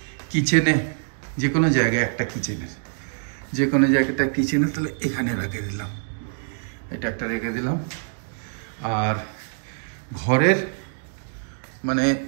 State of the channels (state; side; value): silent; left; digital silence